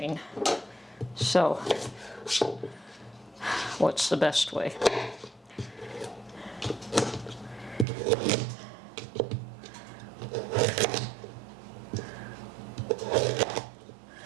So, what's the best way?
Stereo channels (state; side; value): drops out; left; at 7.9 s